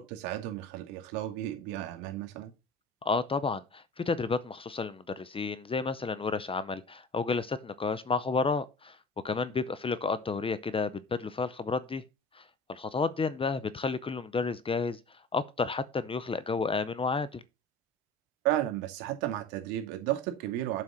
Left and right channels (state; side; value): normal; both; correlation 0.37